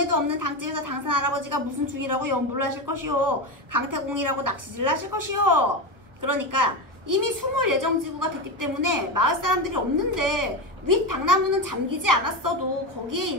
없는 당집에서 당산 할아버지가 무슨 중이라고 연불을 하실 것이오. 강태공이라고 낚시질을 하실 것이오. 그러니까 이미 숨을 예정지구가 됐기 때문에 마을 사람들이 없는데 윗 당나무는 잠기지 않았어도 거기에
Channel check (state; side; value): late; left; 1.1 ms